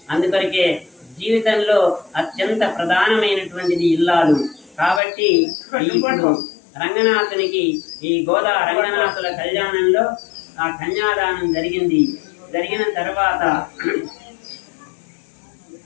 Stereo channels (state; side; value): drops out; right; at 5.0 s